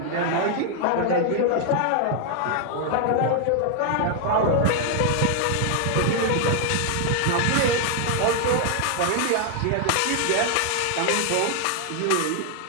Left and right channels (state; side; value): different; both; correlation 0.00